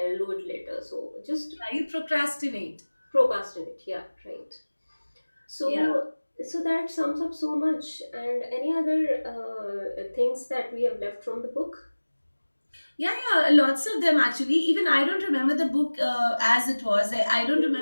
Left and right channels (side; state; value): both; inverted; correlation -1.00